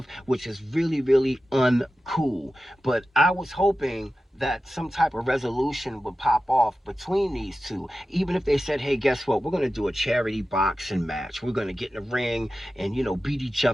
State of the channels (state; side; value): normal; both; correlation 0.94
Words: which is really, really uncool. But I was hoping that some type of resolution would pop off between these two. Even if they said, hey, guess what? We're going to do a charity boxing match. We're going to get in the ring and, beat each